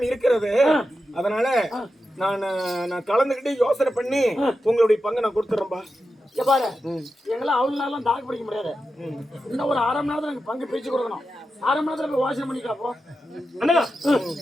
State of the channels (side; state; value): both; normal; correlation 0.90